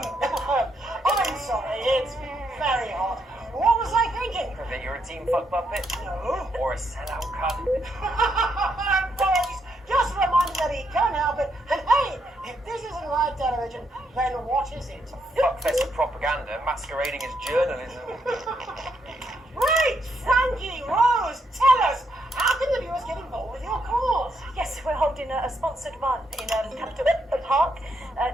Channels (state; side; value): normal; both; correlation 0.77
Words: sorry, it's very hot. What was I thinking? That you're a team fuck puppet? No. Or a sellout cunt? Boys, just reminded that he can't help it. And hey, if this isn't live television, then what is it? Fuckfest of propaganda masquerading as journalism. Right, Frankie, Rose, tell us, how can the viewers get involved with your cause? Yes, we're holding a sponsored run in Capital Park